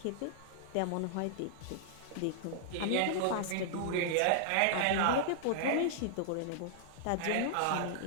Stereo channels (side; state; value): both; different; correlation -0.01